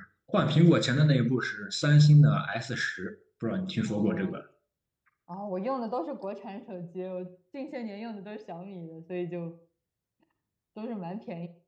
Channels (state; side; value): identical; both; correlation 1.00